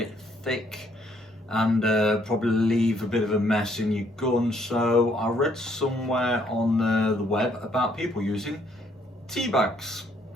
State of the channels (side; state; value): both; normal; correlation 0.68